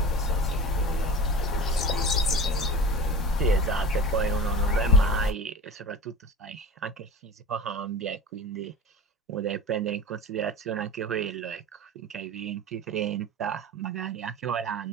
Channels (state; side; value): normal; both; correlation 0.33